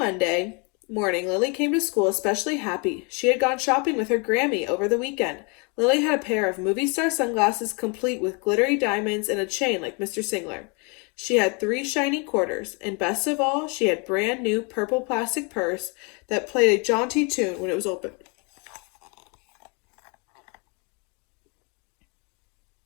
morning, Lily came to school especially happy. She had gone shopping with her Grammy over the weekend. Lily had a pair of movie star sunglasses complete with glittery diamonds and a chain like Mr. Singler. She had 3 shiny quarters, and best of all, she had brand new purple plastic purse that played a jaunty tune when it was opened.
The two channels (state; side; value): quieter; right; 32.7 dB